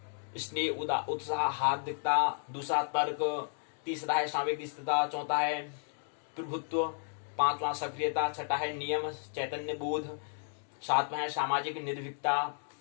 स्नेह, उत्साह, हार्दिकता, दूसरा तर्क, तीसरा है सामयिक स्थिरता, चौथा है प्रभुत्व, पांचवा सक्रियता, छठा है नियम चैतन्य बोध, सातवां है सामाजिक निर्भीकता।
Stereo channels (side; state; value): right; silent; 56 dB below the other